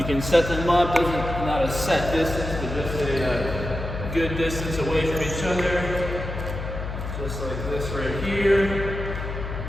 can set them up. Not a set distance, but just a good good distance away from each other. Just like this right here.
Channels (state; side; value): noise; left; hum, 6 dB below the sound